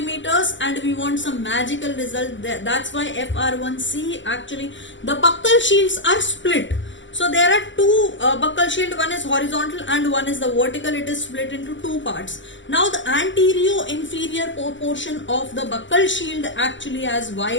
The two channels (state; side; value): late; right; 0.54 ms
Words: and we want some magical result. That's why FR1C, actually the buccal shields are split. So there are two buccal shield, one is horizontal and one is the vertical. It is split into two parts. Now the anterior inferior portion of the buccal shield actually has